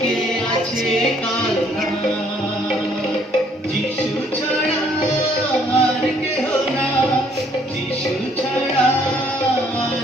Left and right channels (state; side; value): normal; both; correlation 0.64